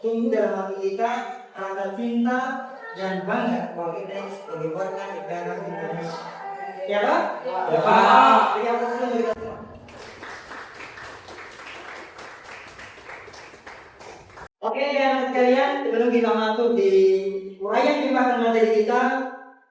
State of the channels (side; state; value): both; identical; correlation 1.00